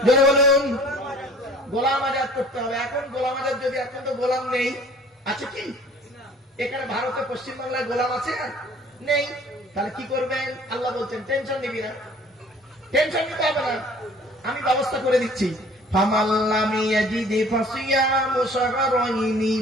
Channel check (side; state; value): both; normal; correlation 0.51